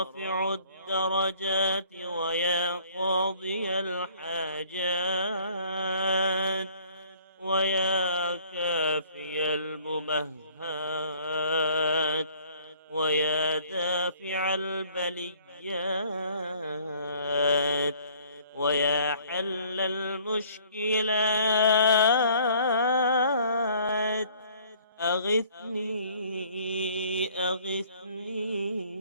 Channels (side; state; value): both; inverted; correlation -0.57